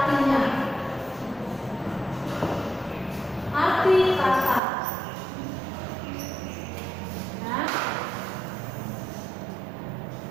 Arti kata. Ya.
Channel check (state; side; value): drops out; left; at 4.6 s